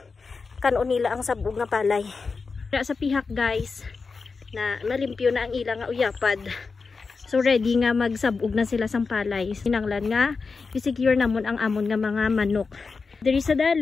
kanon nila ang sabog nga palay. Sa pihak guys na malimpyo na ang ilang nga uyapad. So ready nga magsabog na sila sang palay. Kinanglan nga i-secure namon ang amon nga mga manok. Diri sa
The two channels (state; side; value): quieter; right; 4.6 dB